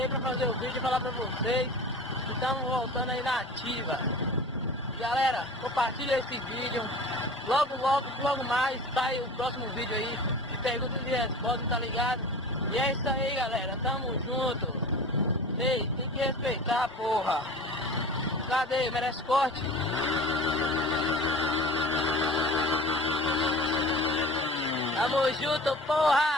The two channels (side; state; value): both; normal; correlation 0.38